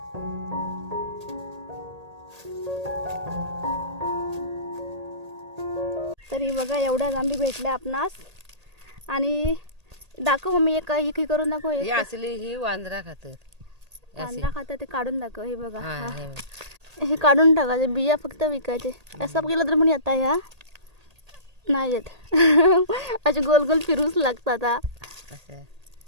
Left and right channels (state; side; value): late; left; 1.8 ms